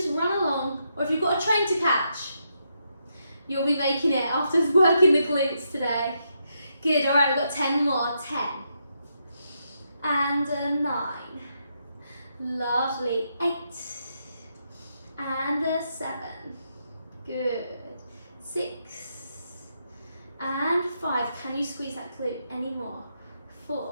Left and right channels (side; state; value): both; inverted; correlation -0.80